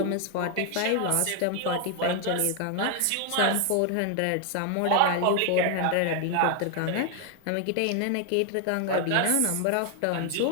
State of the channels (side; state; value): both; different; correlation 0.00